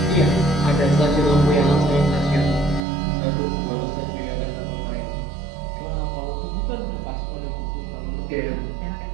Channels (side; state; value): left; drops out; at 2.8 s